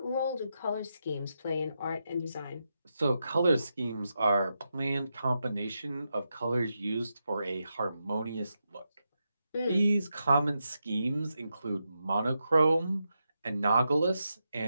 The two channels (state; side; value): inverted; both; correlation -0.86